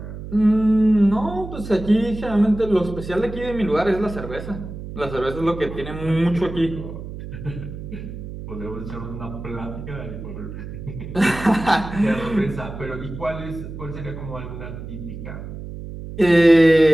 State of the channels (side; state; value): right; noise; hum, 10 dB below the sound